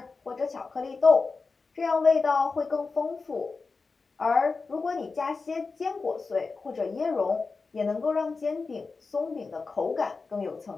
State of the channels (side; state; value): right; quieter; 4.3 dB